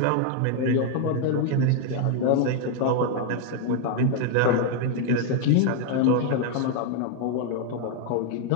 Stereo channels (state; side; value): different; both; correlation 0.01